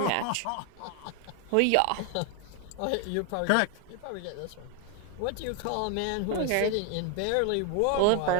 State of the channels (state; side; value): different; both; correlation 0.01